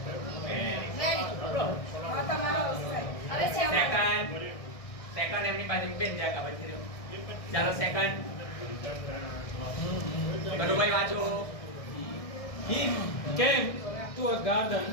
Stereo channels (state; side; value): late; right; 1.6 ms